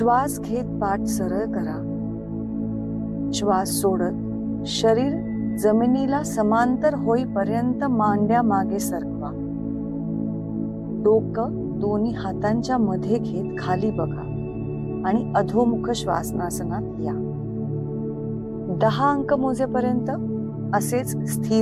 घेत पाठ सरळ करा। श्वास सोडत शरीर जमिनीला समांतर होईपर्यंत मांड्या मागे सरकवा। डोकं दोन्ही हातांच्या मध्ये घेत खाली बघा आणि अधोमुख श्वासनासनात या। 10 अंक मोजेपर्यंत असेच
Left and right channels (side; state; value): both; identical; correlation 1.00